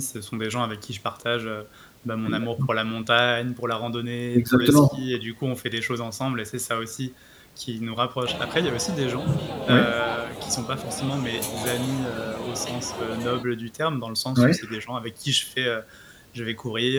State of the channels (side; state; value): both; identical; correlation 1.00